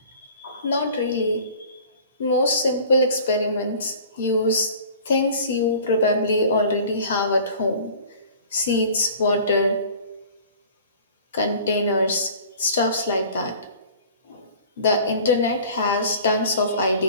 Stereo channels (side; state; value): both; inverted; correlation -0.46